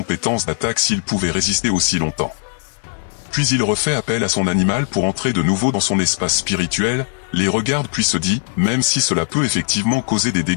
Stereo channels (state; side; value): silent; right; digital silence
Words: d'attaque s'ils pouvaient résister aussi longtemps. Puis il refait appel à son animal pour entrer de nouveau dans son espace spirituel, les regarde puis se dit, même si cela peut effectivement causer des